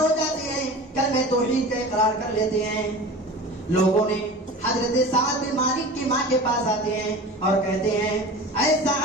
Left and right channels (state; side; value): normal; both; correlation 0.36